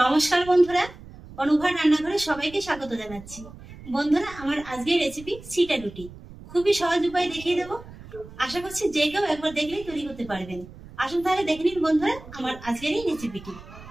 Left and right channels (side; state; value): right; noise; rumble, 17 dB below the sound